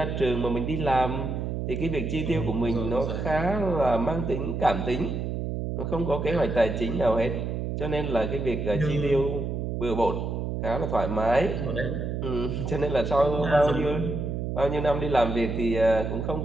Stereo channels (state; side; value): noise; right; hum, 3 dB below the sound